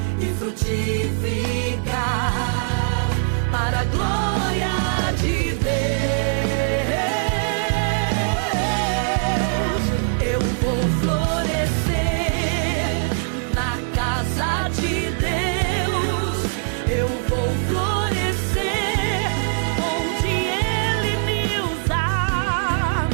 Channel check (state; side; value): silent; left; digital silence